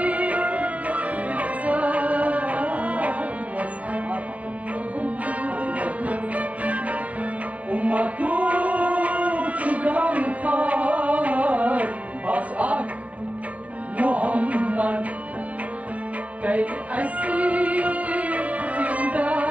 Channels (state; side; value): late; left; 0.066 ms